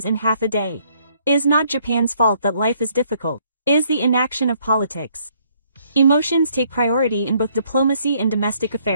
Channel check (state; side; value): inverted; both; correlation -0.66